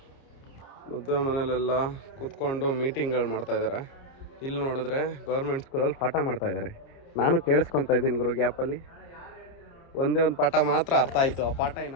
ಮದುವೆ ಮನೇಲೆಲ್ಲ ಕೂತ್ಕೊಂಡು ಮೀಟಿಂಗ್ಗಳು ಮಾಡ್ತಾಯಿದ್ದಾರೆ. ಇಲ್ಲಿ ನೋಡಿದ್ರೆ ಗೌರ್ಮೆಂಟ್ ಸ್ಕೂಲಲ್ಲಿ ಪಾಠ ಮಾಡ್ತಾಯಿದ್ದಾರೆ. ನಾನು ಕೇಳಿಸ್ಕೊತಾ ಇದ್ದೀನಿ ಗುರು ಗ್ಯಾಪಲ್ಲಿ. ಒಂದೇ ಒಂದು ಪಾಠ ಮಾತ್ರ ಅರ್ಥ ಆಯಿತು. ಆ ಪಾಠ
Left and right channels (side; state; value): right; late; 30 ms